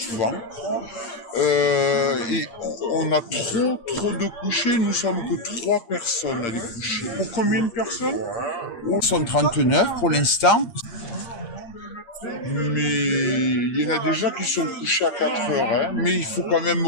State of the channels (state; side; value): late; right; 8.6 ms